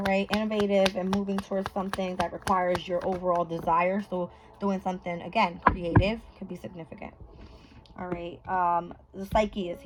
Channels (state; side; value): identical; both; correlation 1.00